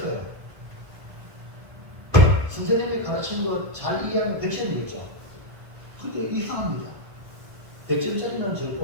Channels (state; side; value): late; left; 1.5 ms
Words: 선생님이 가르친 거 잘 이해하면 100점이겠죠. 근데 이상합니다. 100점짜리는